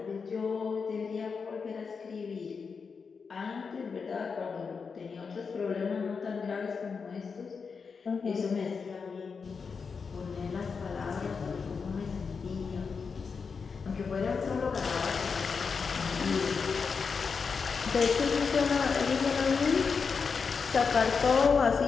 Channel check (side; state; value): right; quieter; 5.4 dB